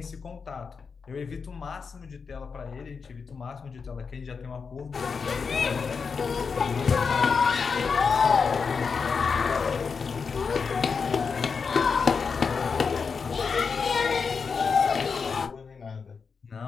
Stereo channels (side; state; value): right; quieter; 5.4 dB